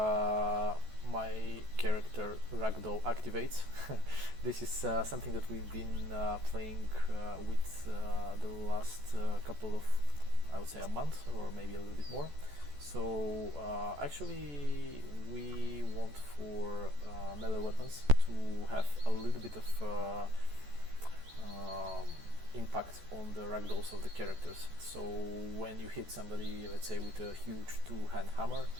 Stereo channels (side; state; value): left; late; 14 ms